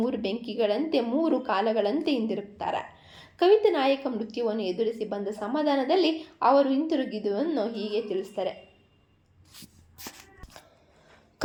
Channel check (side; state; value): both; identical; correlation 1.00